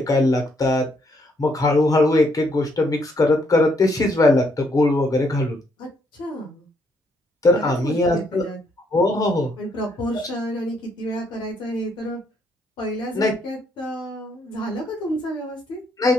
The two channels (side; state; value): both; normal; correlation 0.72